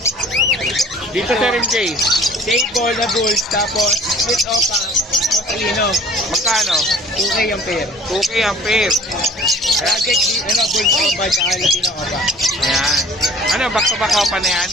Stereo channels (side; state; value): both; normal; correlation 0.49